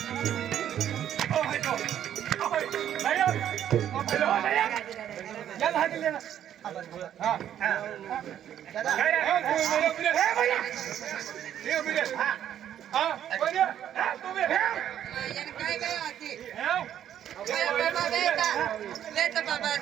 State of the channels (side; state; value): left; quieter; 10.4 dB